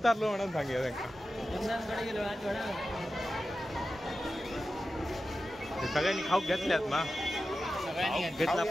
म्हणून सांगितलं त्यांना. सगळ्यांनी खाऊ घेतल्यात ना. घेतला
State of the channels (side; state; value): both; normal; correlation 0.93